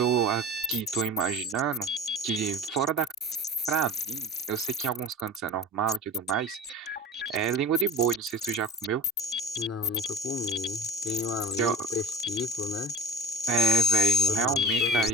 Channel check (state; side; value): normal; both; correlation 0.36